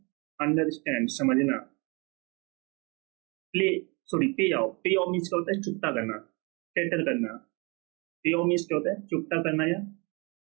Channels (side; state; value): left; quieter; 29.6 dB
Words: अंडरस्टैंड, समझना। प्ले सॉरी पे ऑफ। पे ऑफ मीन्स क्या होता है? चुकता करना, सेटल करना। पे ऑफ मीन्स क्या होता है? चुकता करना या